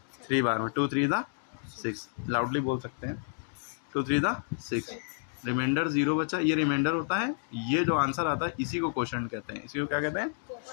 3 बार में। 2 3 दा 6। लाउडली बोल सकते हैं 2 3 दा 6। रिमाइंडर 0 बचा, ये रिमाइंडर होता है। ये जो आंसर आता है इसी को कोशेंट कहते हैं। इसी को क्या कहते हैं?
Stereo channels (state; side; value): silent; right; digital silence